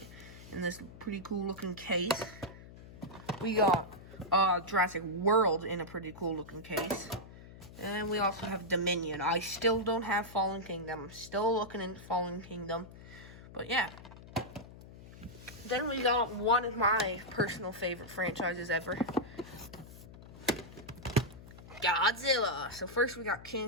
in this pretty cool looking case. We got Jurassic World in a pretty cool looking case. And we also have Dominion. I still don't have Fallen Kingdom. I'm still looking into Fallen Kingdom. But yeah. Then we got one of my personal favorite franchises ever. Godzilla. So first we got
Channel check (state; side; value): noise; left; hum, 17 dB below the sound